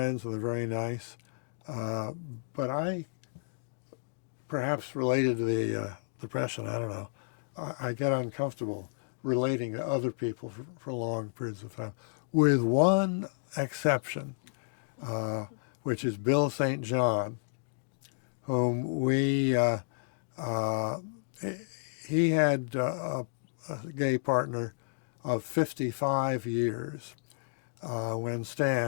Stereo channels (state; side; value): silent; right; digital silence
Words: and they're very nice. But I, perhaps related to the depression, I don't know, I get uncomfortable relating to other people for long periods of time, with one exception, which is Bill St. John, whom he had a gay partner of 55 years when